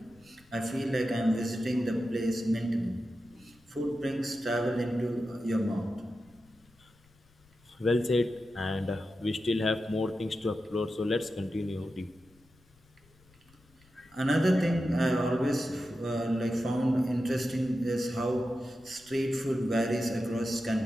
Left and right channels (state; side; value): noise; left; rumble, 30 dB below the sound